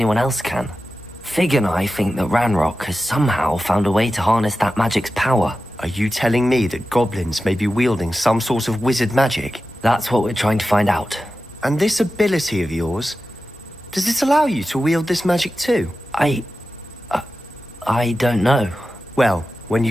else can. Fig and I think that Ranrock has somehow found a way to harness that magic's power. Are you telling me that goblins may be wielding some sort of wizard magic? That's what we're trying to find out. And this ability of yours, does it allow you to wield this magic too? I don't know. Well, when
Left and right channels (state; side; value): normal; both; correlation 0.93